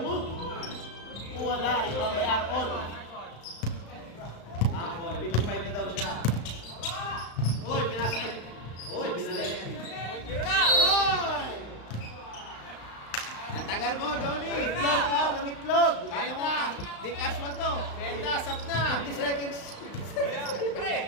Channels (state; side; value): late; right; 35 ms